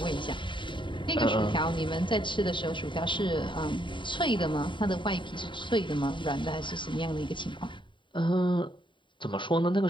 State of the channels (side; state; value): right; late; 0.23 ms